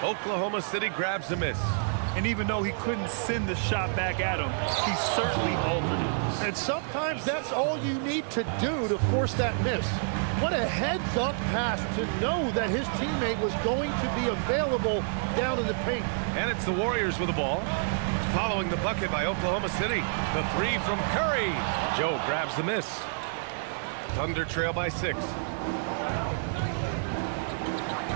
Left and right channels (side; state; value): left; silent; 59 dB below the other